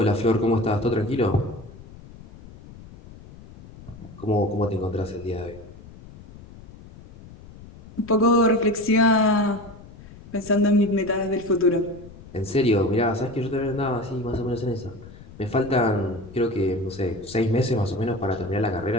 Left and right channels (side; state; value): left; noise; rumble, 19 dB below the sound